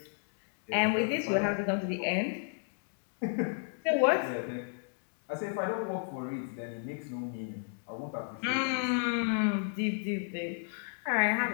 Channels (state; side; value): silent; right; 56 dB below the other